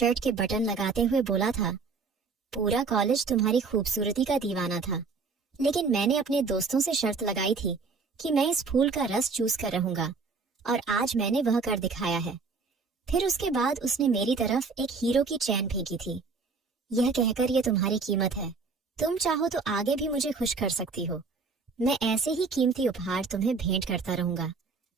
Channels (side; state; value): left; quieter; 4.6 dB